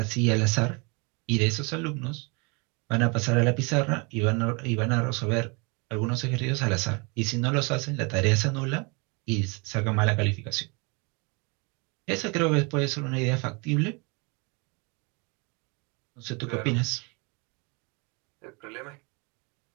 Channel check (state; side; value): quieter; left; 30.8 dB